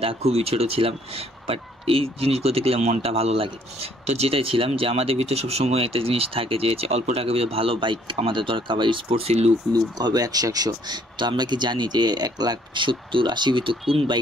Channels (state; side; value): normal; both; correlation 0.63